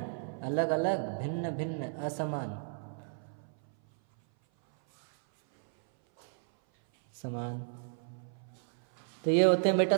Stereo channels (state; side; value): silent; left; 56 dB below the other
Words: अलग अलग, भिन्न भिन्न, असमान, समान। तो ये होते हैं बेटा